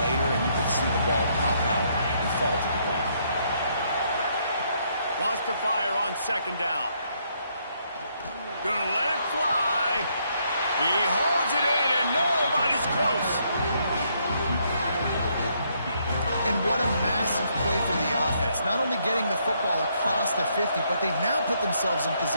and you could see the ball pop out and fall to the ground. Wants to fire on 2nd down. Gonna let it fly. He holds it in, and nobody's close. And what a massive play for the offense. Not only getting the football across the 50, but they've now put themselves in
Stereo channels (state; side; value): inverted; both; correlation -0.72